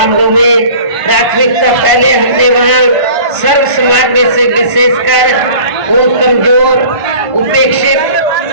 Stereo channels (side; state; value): left; late; 1.5 ms